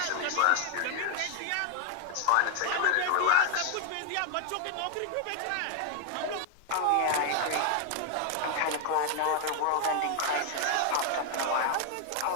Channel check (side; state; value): both; different; correlation 0.00